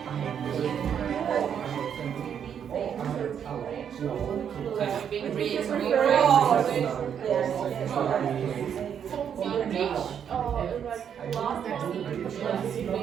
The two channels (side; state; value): left; quieter; 8.3 dB